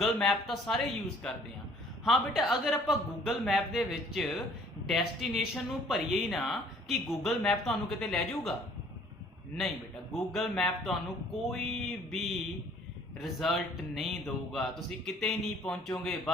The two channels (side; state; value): both; normal; correlation 0.57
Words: मैप तो सारे यूज़ करते हैं। हाँ बेटा, अगर आपां गूगल मैप दे विच डेस्टिनेशन नू भरीए ही ना कि गूगल मैप तुहानू किते लै जाऊगा, नहीं बेटा, गूगल मैप तुहानू कोई भी रिजल्ट नहीं दूगा, तुसी किते नहीं पहुंचोगे,